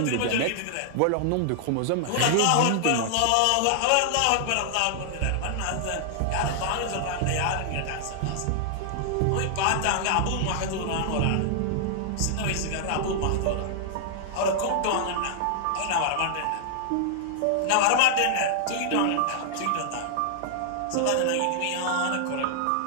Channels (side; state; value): both; different; correlation -0.01